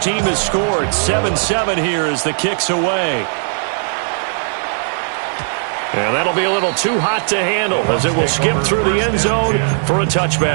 team has scored. 7-7 here as the kick's away. And that'll be a little too hot to handle as it will skip through the end zone for a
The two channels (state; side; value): silent; left; 57 dB below the other